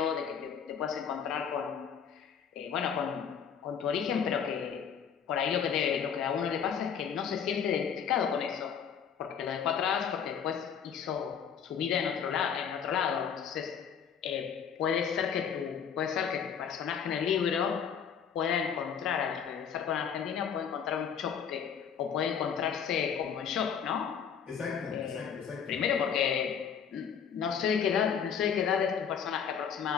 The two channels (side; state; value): right; quieter; 7.5 dB